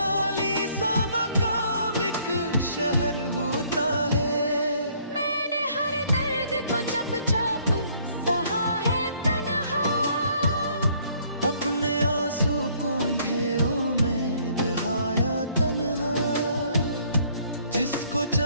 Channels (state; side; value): inverted; both; correlation -0.63